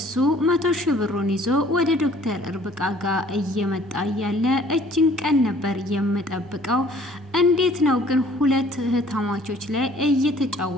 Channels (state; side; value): normal; both; correlation 0.55